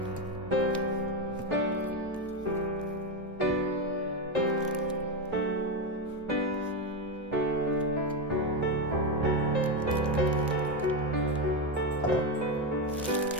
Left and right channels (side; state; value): both; normal; correlation 0.10